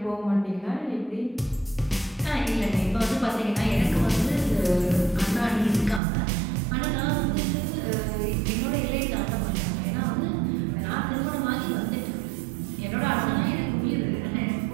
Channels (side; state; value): left; drops out; at 6.0 s